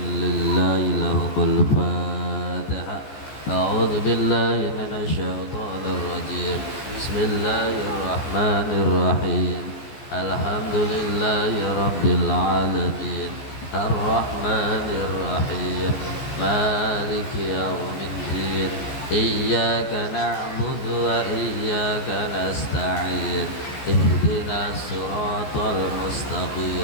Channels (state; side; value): late; right; 14 ms